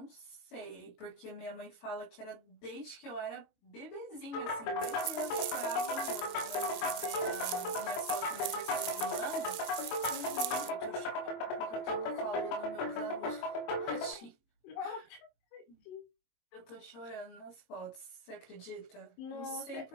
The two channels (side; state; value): right; late; 21 ms